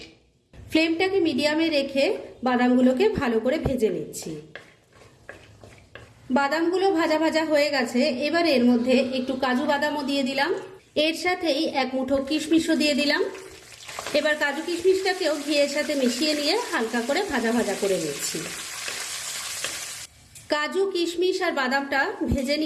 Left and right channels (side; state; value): both; identical; correlation 1.00